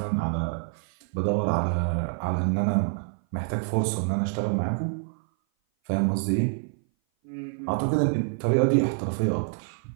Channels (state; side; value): silent; left; 57 dB below the other